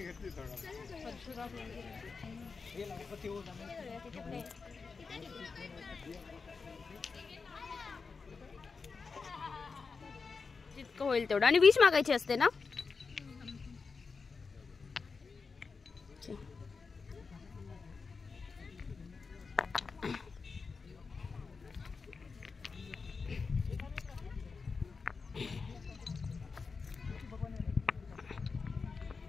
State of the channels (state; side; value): quieter; right; 4.8 dB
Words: जितकं होईल तेवढं. आणि विष मागायची असते ना.